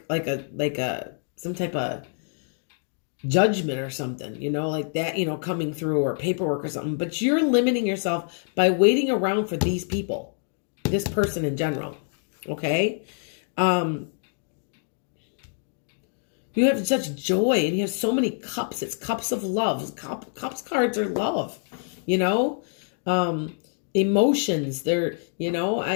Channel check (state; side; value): silent; right; 61 dB below the other